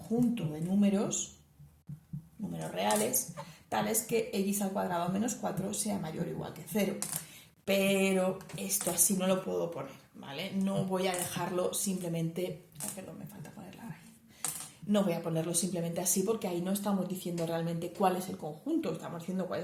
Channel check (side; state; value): both; identical; correlation 1.00